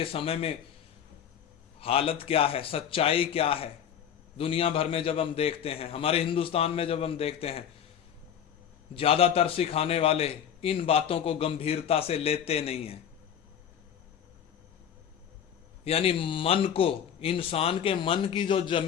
समय में हालत क्या है, सच्चाई क्या है? दुनिया भर में जब हम देखते हैं, हमारे हिंदुस्तान में जब हम देखते हैं, ज्यादातर सिखाने वाले इन बातों को गंभीरता से लेते नहीं हैं। यानी मन को, इंसान के मन की जो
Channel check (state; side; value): quieter; right; 8.9 dB